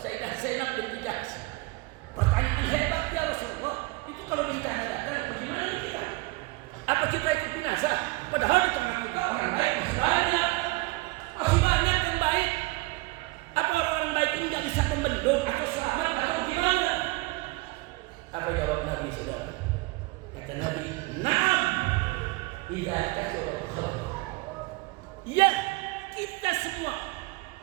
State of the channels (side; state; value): left; quieter; 22.7 dB